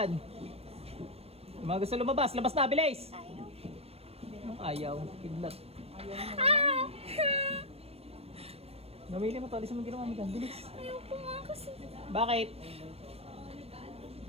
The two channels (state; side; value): late; left; 0.29 ms